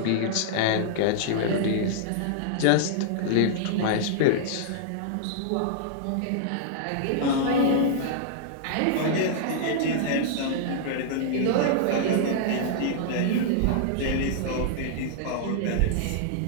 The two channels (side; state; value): both; different; correlation -0.01